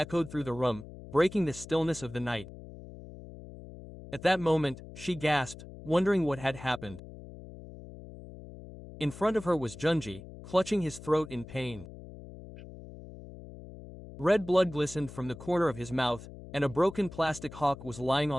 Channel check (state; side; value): noise; left; hum, 15 dB below the sound